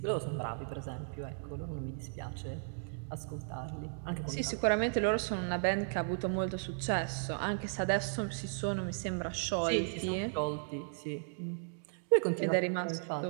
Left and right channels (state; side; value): silent; left; digital silence